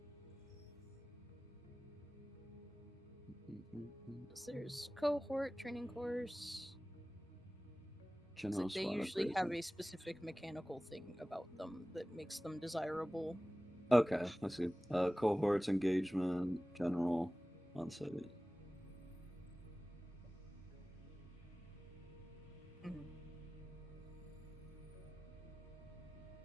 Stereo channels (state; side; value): normal; both; correlation 0.98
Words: there's cohort, training course. General They squad usually upgrades. have a specific mechanical thing about them that makes them desirable. Okay, I see. Cohorts, engagement, general, on-site. Mhm.